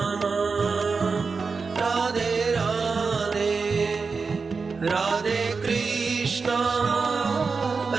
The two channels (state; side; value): quieter; left; 4.7 dB